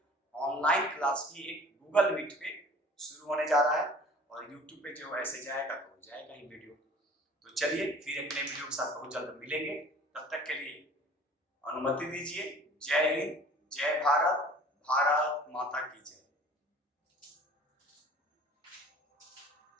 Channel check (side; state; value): both; normal; correlation 0.47